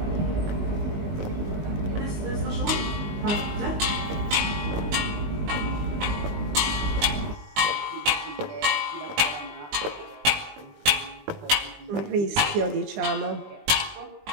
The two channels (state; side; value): late; left; 19 ms